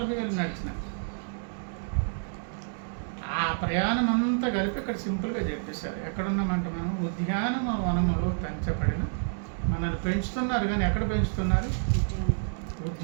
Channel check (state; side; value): silent; left; digital silence